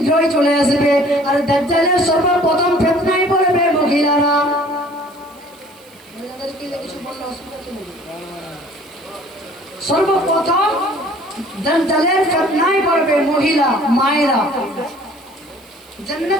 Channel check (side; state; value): right; noise; hiss, 28 dB below the sound